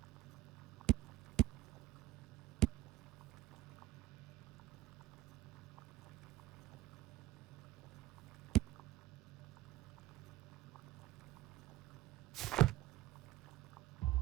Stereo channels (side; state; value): left; quieter; 15.7 dB